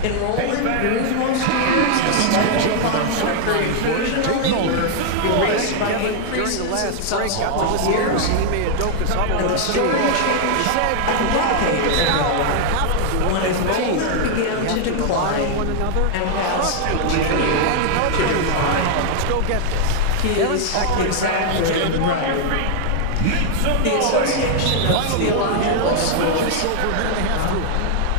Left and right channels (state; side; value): different; both; correlation 0.00